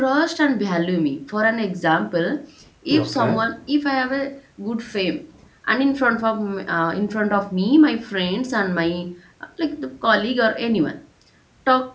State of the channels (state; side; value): identical; both; correlation 1.00